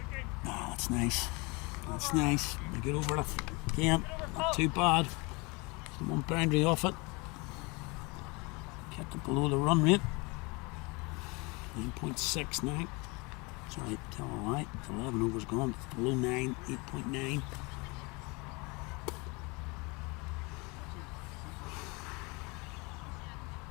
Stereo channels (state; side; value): quieter; right; 27.6 dB